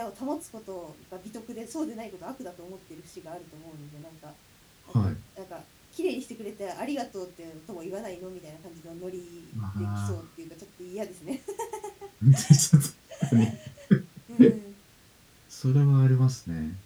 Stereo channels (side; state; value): both; identical; correlation 1.00